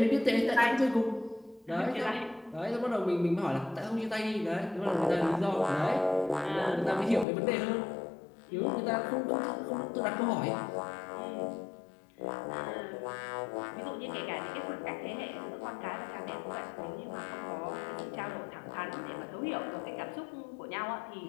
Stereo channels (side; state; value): right; drops out; at 7.2 s